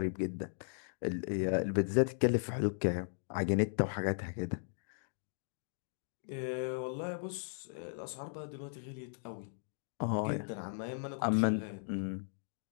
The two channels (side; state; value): right; silent; digital silence